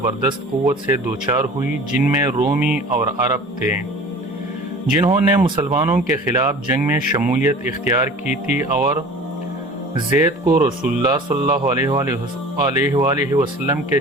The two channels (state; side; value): normal; both; correlation 0.42